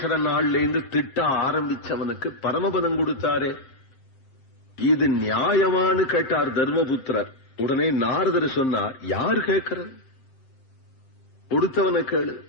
நாள்ல இருந்து திட்ட ஆரம்பிச்சவனுக்கு பரமபதம் கொடுத்தாரே, இது நியாயமானு கேட்டார் தர்மபுத்திரர். உடனே நாரதர் சொன்னார், யார் கேட்கிறது? கொடுத்தவனை கேளு.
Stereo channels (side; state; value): right; late; 7.6 ms